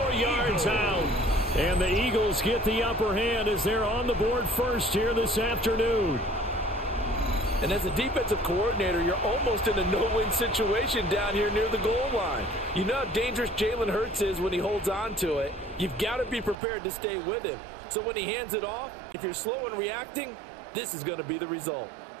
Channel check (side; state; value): left; drops out; at 16.6 s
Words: yards out. And the Eagles get the upper hand as they're on the board first here this afternoon. And as a defensive coordinator, you're almost in a no-win situation down here near the goal line. You know how dangerous Jalen Hurts is when he holds on to it. You've got to be prepared to stay with him. So when he hands it off, if you're slow in reacting, this is going to be the result.